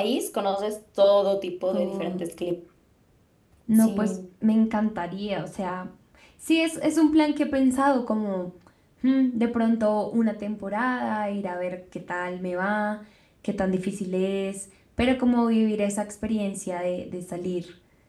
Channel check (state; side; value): identical; both; correlation 1.00